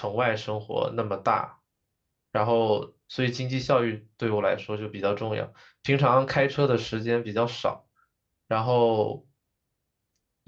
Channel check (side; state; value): both; identical; correlation 1.00